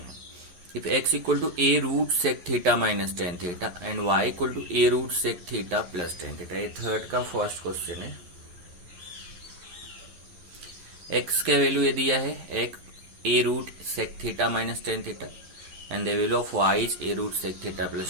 If x equal to a root sec theta minus tan theta and y equal to a root sec theta plus tan theta, ये थर्ड का फर्स्ट क्वेश्चन है। x का वैल्यू ये दिया है a root sec theta minus tan theta and the value of y is a root sec theta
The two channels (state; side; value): late; left; 11 ms